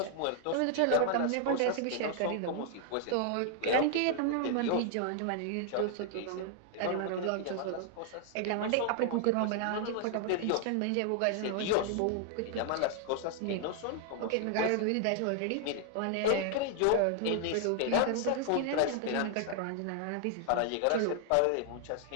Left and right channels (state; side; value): different; both; correlation 0.00